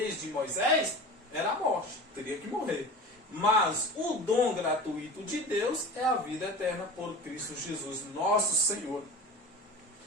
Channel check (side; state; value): both; normal; correlation 0.34